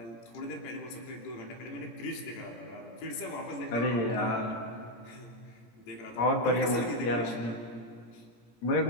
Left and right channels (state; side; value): late; right; 17 ms